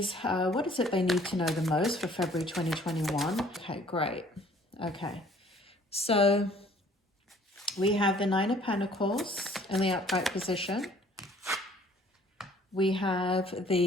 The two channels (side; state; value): both; normal; correlation 0.56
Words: what is it they need to know the most for February 2021? Okay, great. Okay, so we have the Nine of Pentacles in the upright position. We have